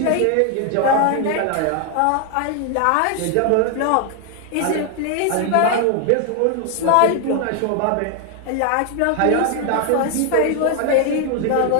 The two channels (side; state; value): both; different; correlation 0.00